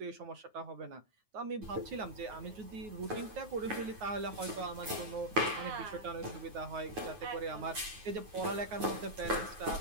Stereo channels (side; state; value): left; late; 9.4 ms